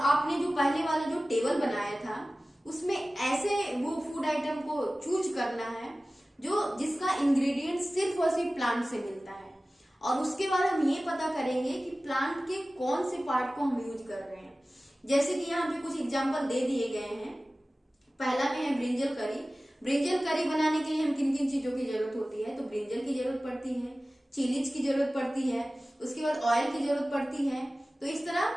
आपने जो पहले वाला जो टेबल बनाया था उसमें ऐसे वो फूड आइटम को चूज करना है जो जिसका इंग्रेडिएंट सिर्फ और सिर्फ प्लांट से मिलता है, और उसके बाद हम ये पता करेंगे कि प्लांट के कौन से पार्ट को हम यूज कर रहे हैं। जैसे कि यहाँ पे कुछ एग्जाम्पल दे दिए गए हैं। पहला में है ब्रिंजल करी। ब्रिंजल करी बनाने के लिए हम किन किन चीजों की जरूरत होती है? तो ब्रिंजल की जरूरत पड़ती है, चिलीज की जरूरत पड़ती है, उसके बाद ऑयल की जरूरत पड़ती है। तो इस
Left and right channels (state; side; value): normal; both; correlation 0.97